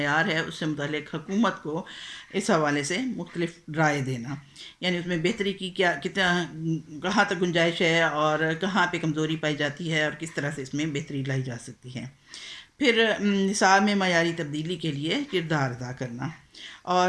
ہے اس سے متعلق حکومت کو اس حوالے سے مختلف رائے دینا، یعنی اس میں بہتری کی کتنا کہاں تک گنجائش ہے، اور کہاں پہ کمزوری پائی جاتی ہے، اور کس طرح سے اس میں بہتری لائی جا سکتی ہے۔ پھر نصاب میں معیاری تبدیلی کے لیے کردار ادا کرنا،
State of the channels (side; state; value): both; identical; correlation 1.00